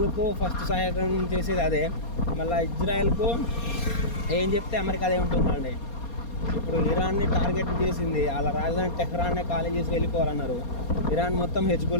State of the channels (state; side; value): late; right; 4.3 ms